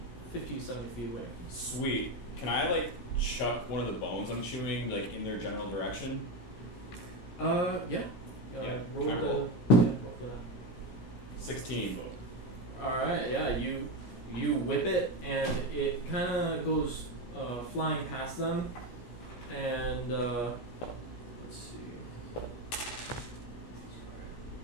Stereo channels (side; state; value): right; late; 17 ms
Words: 50, 70 feet away. Sweet. Can I, like, chuck one of the bones I'm chewing, like, in their general direction? Yeah. Yeah, Roll can I the. roll? Yeah, roll for that. 16. Alright, yeah, you whip it, and it kind of goes flying past them, and let's see.